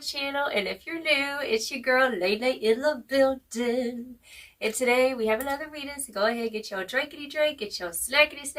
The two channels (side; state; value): both; identical; correlation 1.00